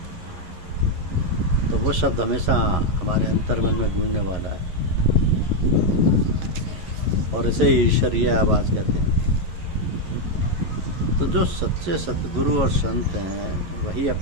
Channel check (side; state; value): left; late; 11 ms